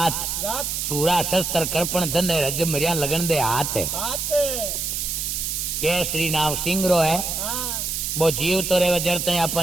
रात। सूरा शस्त्र कर्पण धन रज मरिया लगन दे हाथ। हाथ। केसरी नाम सिंगरो है। हाँ। वो जीव तो रहे जड़ते आप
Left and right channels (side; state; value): right; noise; hiss, 2 dB below the sound